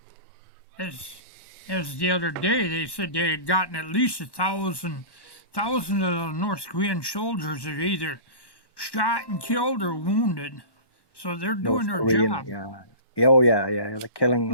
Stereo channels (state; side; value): late; right; 1.1 ms